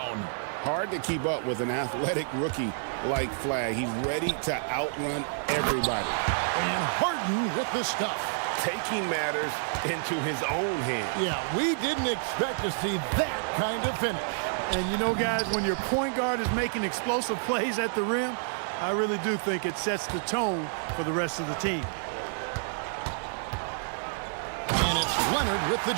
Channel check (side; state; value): left; silent; 59 dB below the other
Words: Hard to keep up with an athletic rookie like Flag. He's ready to outrun everybody. And Harden with the stuff. Taking matters into his own hands. Yeah, we didn't expect to see that kind of finish. And you know, guys, when your point guard is making explosive plays at the rim, I really do think it sets the tone for the rest of the team. And it's Leonard with the